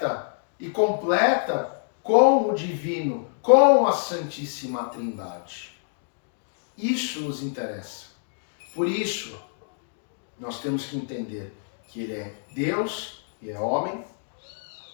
e completa com o divino, com a Santíssima Trindade. Isso nos interessa. Por isso, nós temos que entender que ele é Deus e é homem,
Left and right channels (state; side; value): silent; right; digital silence